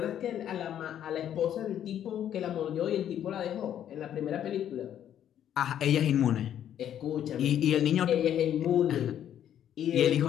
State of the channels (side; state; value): right; quieter; 10.3 dB